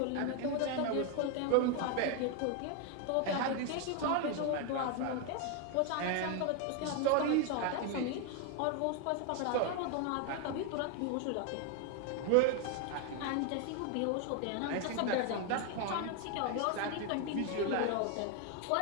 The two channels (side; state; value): both; different; correlation 0.01